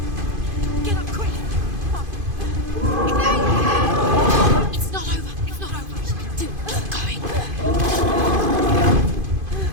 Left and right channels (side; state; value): left; late; 2.5 ms